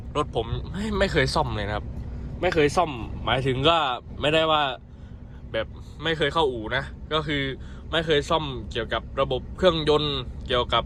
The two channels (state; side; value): identical; both; correlation 1.00